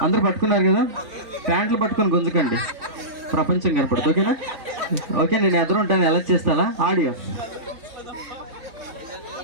అందరూ పట్టుకున్నారు కదా, ప్యాంట్లు పట్టుకొని గుంజకండి, ప్రపంచం కనపడుతుంది. ఓకేనా? ఓకే, నేను ఎదురు ఉంటాను. ఎలా చేస్తాలా ఆడియో?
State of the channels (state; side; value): late; left; 3.5 ms